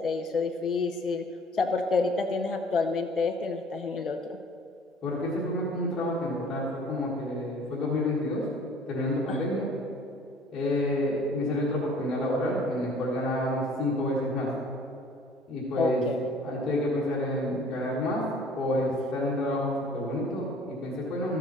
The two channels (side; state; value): both; normal; correlation 0.52